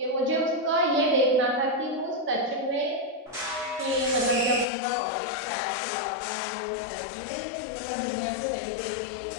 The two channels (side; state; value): right; drops out; at 4.7 s